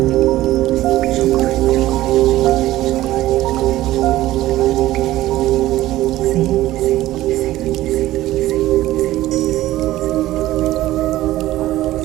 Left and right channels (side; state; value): left; quieter; 15.5 dB